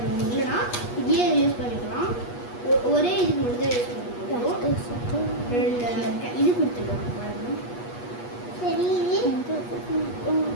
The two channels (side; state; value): right; late; 8.3 ms